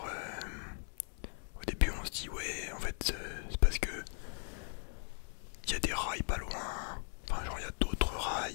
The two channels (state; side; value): silent; right; 52 dB below the other